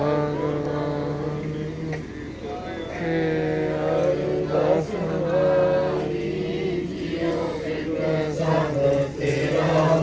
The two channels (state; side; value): identical; both; correlation 1.00